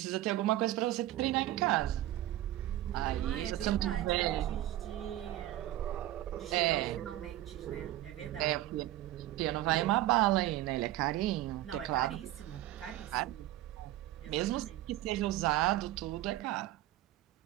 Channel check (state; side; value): quieter; left; 14.8 dB